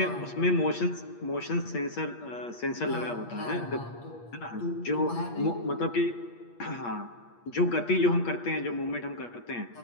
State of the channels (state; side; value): late; right; 8.5 ms